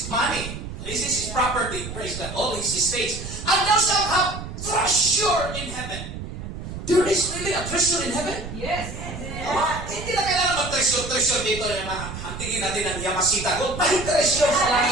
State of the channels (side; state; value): right; noise; rumble, 9 dB below the sound